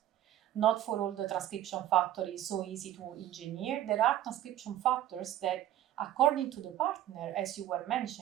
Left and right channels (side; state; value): left; quieter; 12.6 dB